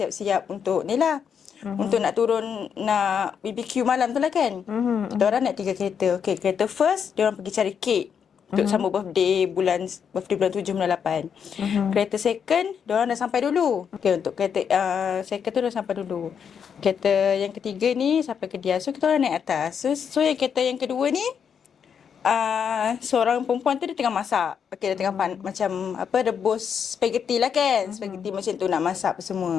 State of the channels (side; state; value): right; quieter; 7.3 dB